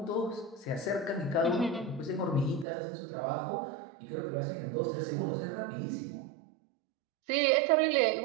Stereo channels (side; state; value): left; drops out; at 2.7 s